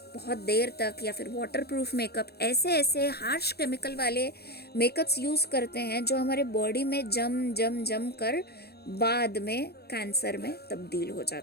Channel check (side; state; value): right; late; 0.47 ms